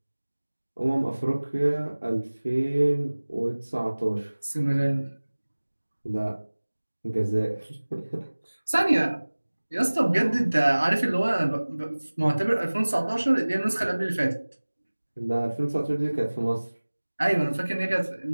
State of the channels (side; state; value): both; inverted; correlation -1.00